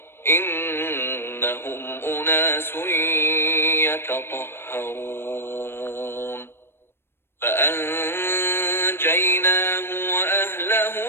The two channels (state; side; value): late; right; 0.11 ms